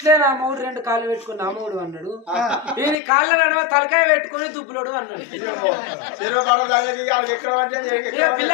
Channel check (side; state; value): right; drops out; at 3.0 s